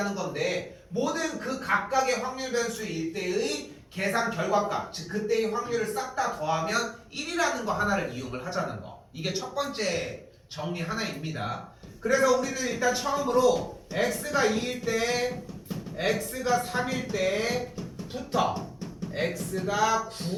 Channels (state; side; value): identical; both; correlation 1.00